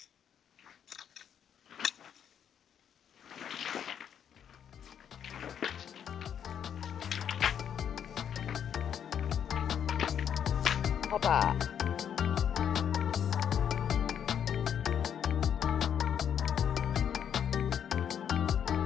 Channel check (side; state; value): right; quieter; 8.7 dB